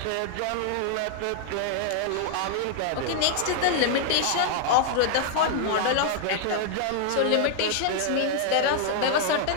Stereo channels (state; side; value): different; both; correlation 0.00